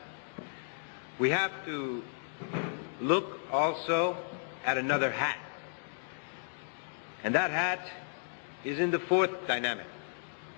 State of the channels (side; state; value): right; silent; digital silence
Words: We have to look also at another hat. And that hat is in the fourth dynamic.